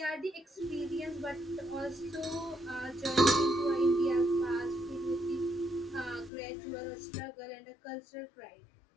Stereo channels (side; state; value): right; drops out; at 6.3 s